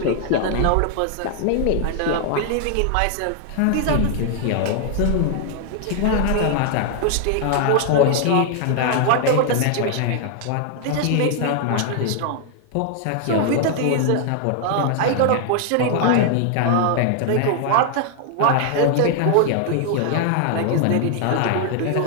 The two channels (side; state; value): both; different; correlation 0.00